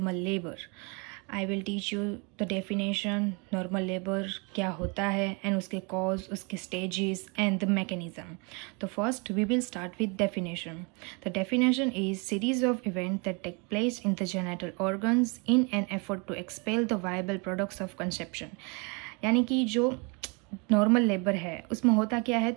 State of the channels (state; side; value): quieter; left; 31.9 dB